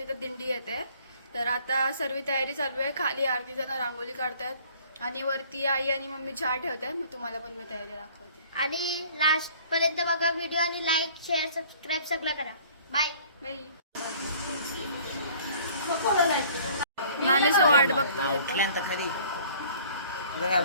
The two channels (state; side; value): inverted; both; correlation -0.53